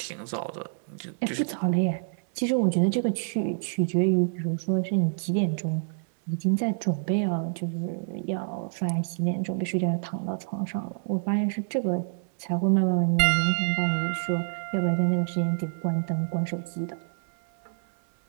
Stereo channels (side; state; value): left; silent; 60 dB below the other